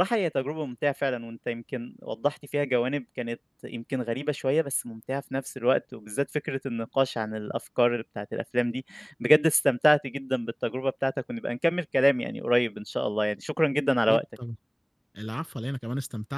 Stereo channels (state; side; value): identical; both; correlation 1.00